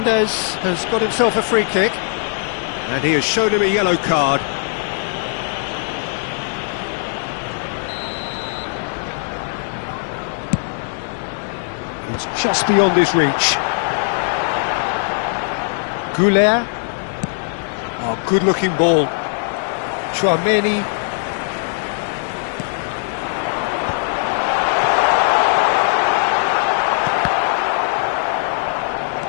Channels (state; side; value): silent; right; digital silence